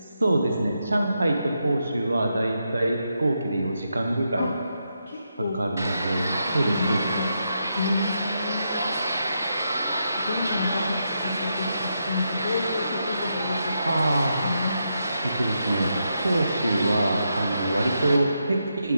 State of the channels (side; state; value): both; inverted; correlation -0.83